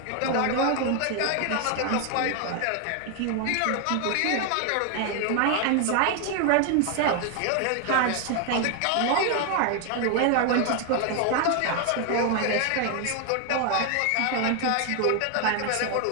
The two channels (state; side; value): different; both; correlation 0.01